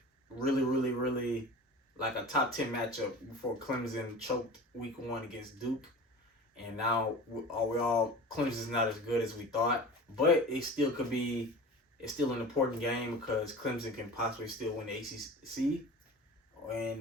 really, really, really like a top 10 matchup before Clemson choked week 1 against Duke. And now Clemson's not as good as we thought, but it's still an important game because Clemson can possibly still win the ACC.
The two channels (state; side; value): normal; both; correlation 0.36